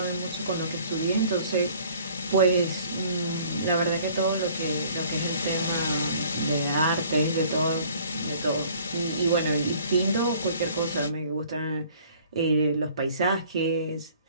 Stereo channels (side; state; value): both; inverted; correlation -0.54